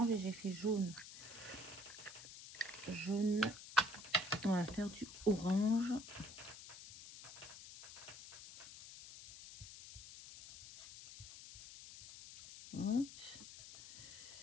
et j'ai fait jaune. Jaune. On va faire du orange. Hop.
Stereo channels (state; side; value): noise; left; hiss, 14 dB below the sound